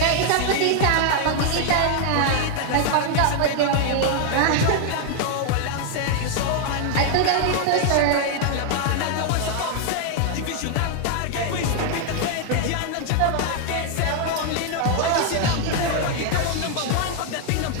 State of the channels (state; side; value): different; both; correlation 0.00